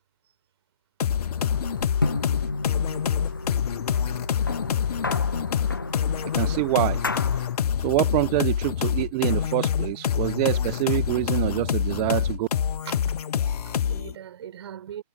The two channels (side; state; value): both; inverted; correlation -0.37